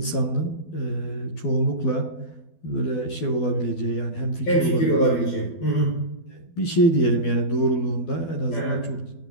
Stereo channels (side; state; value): right; late; 12 ms